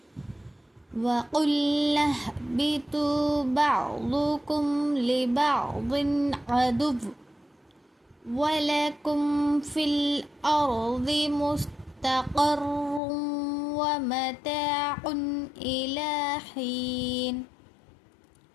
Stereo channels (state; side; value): drops out; right; at 13.0 s